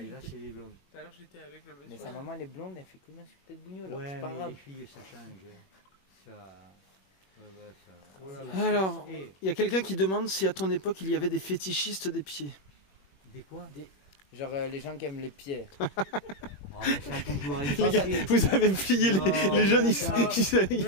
Et là, c'est les blondes. Tout à l'heure, j'étais avec le monsieur. Mais sa maman, elle est blonde, elle fait combien sur peut-être bougnoule? Ouais, c'est pas mais grave. les filles, ça change. Ça. Ouais, ça. Oh là là. Alors, Et il y a quelqu'un qui demande si à ton époque il y avait des fétichistes des pieds. des quoi? Genre les gens qui aiment les pieds. Oh, mais ça a toujours Les gars, existé. vous avez plié les jeunes, ils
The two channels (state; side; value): late; right; 21 ms